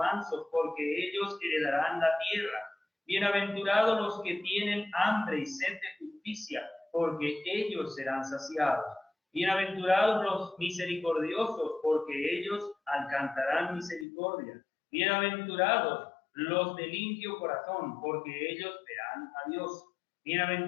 porque ellos heredarán la tierra. Bienaventurados los que tienen hambre y sed de justicia, porque ellos serán saciados. Bienaventurados los misericordiosos, porque ellos alcanzarán misericordia. Bienaventurados los de limpio corazón, porque ellos verán a Dios.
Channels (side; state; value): right; drops out; at 14.1 s